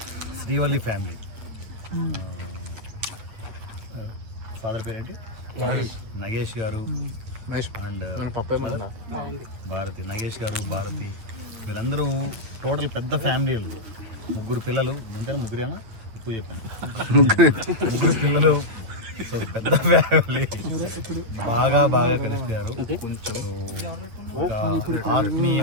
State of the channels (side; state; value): left; late; 8.8 ms